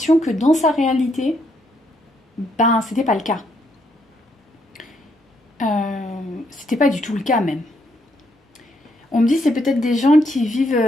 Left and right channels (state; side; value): normal; both; correlation 0.74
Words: que dans sa réalité, ben, c'était pas le cas. C'était pas du tout le cas, même. On me dit c'est peut-être des gens qui